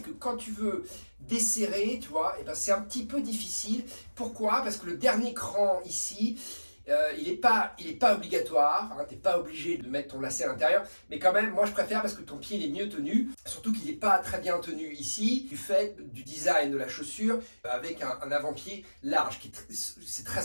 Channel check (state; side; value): inverted; both; correlation -1.00